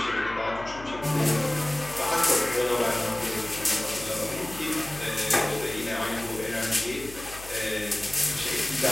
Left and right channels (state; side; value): noise; left; hum, 16 dB below the sound